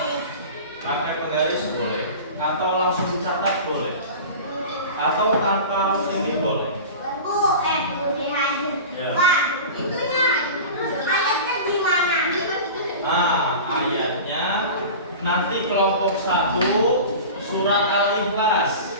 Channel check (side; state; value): both; inverted; correlation -0.34